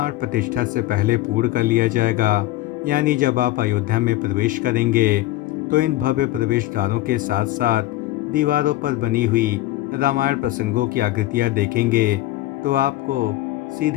प्रतिष्ठा से पहले पूर्ण कर लिया जाएगा। यानी जब आप अयोध्या में प्रवेश करेंगे तो इन भव्य प्रवेश द्वारों के साथ साथ दीवारों पर बनी हुई रामायण प्रसंगों की आकृतियाँ देखेंगे तो आपको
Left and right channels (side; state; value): right; quieter; 16.2 dB